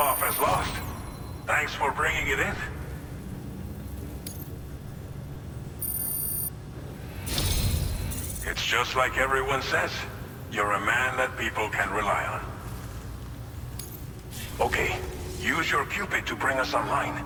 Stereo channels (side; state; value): both; identical; correlation 1.00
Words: as lost. Thanks for bringing it in. It's just like everyone says. You're a man that people can rely on. Okay, use your Cupid to bring us online.